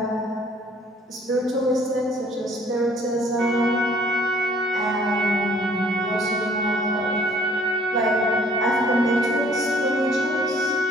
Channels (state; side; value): normal; both; correlation 0.58